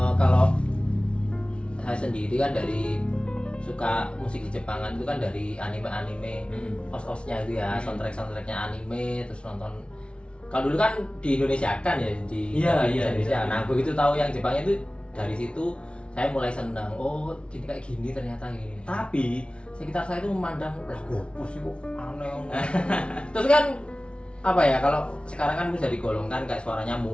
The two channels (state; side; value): late; right; 0.058 ms